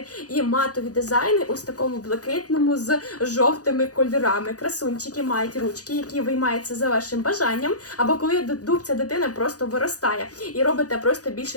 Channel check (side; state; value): right; late; 0.67 ms